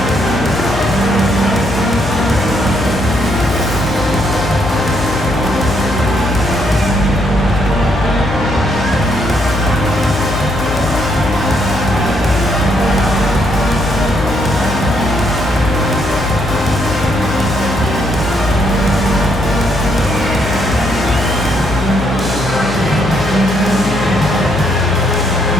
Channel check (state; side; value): noise; left; hum, 6 dB below the sound